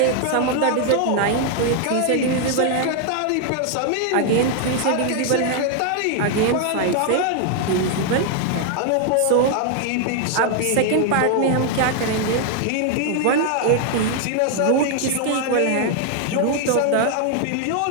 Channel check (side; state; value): both; different; correlation 0.00